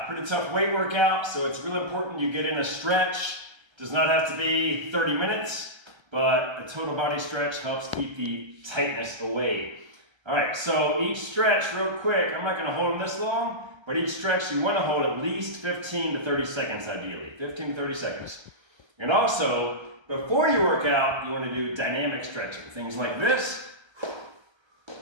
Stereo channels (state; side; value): late; left; 1.3 ms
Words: pretty tough weight workout, so it's really important you get in a stretch. Does not have to be 30 minutes, but a total body stretch helps keep the tightness away. All right, so each stretch, real quick, I'm not gonna hold them this long, but each stretch you wanna hold at least 15 to 30 seconds ideally, 15 to 30 seconds. And also, before you work out, you wanna do dynamic stretching. Things like this,